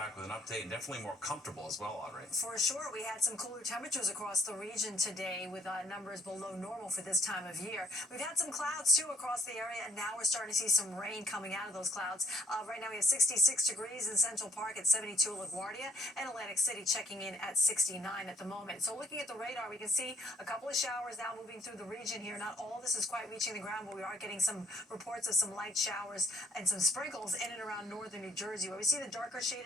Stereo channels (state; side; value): normal; both; correlation 0.62